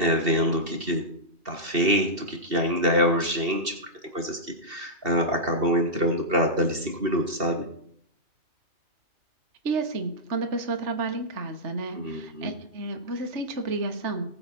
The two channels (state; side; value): late; left; 2.7 ms